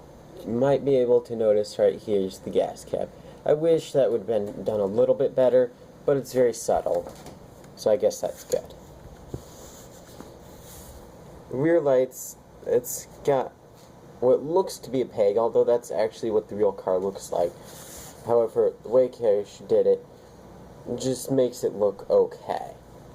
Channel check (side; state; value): both; identical; correlation 1.00